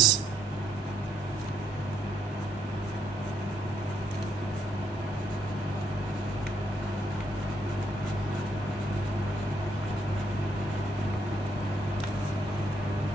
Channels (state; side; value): normal; both; correlation 0.72